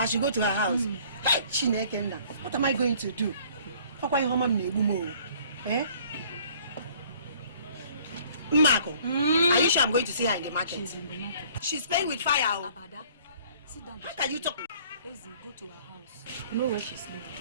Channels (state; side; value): inverted; both; correlation -0.55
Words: should go to her house. What am I going to do? Eh? Marco, are you sure I'm going to see her in the market? She's in the market. She's playing with fire. Abada, sit down. How can you talk? Easy, go to her house. You know where she's living.